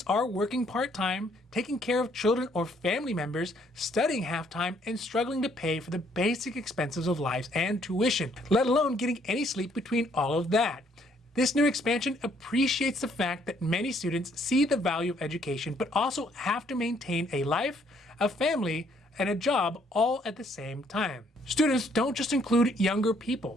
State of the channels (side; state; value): both; normal; correlation 0.66